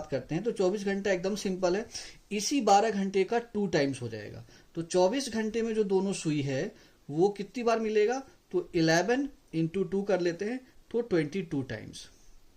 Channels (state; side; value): identical; both; correlation 1.00